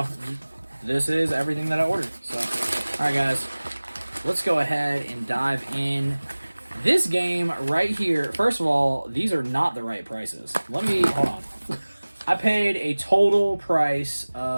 this is everything that I ordered. So, all right, guys, let's go ahead and dive in. This game right here, first of all, these are not the right prices. Hold on. I paid a total price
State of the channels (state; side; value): inverted; both; correlation -1.00